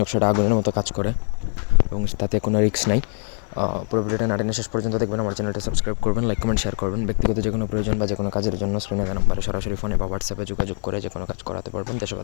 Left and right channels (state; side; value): silent; right; 60 dB below the other